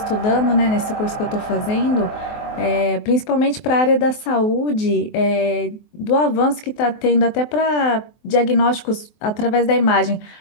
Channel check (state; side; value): late; right; 24 ms